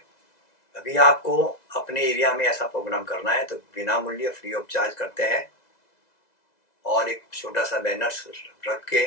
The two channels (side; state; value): right; late; 2.0 ms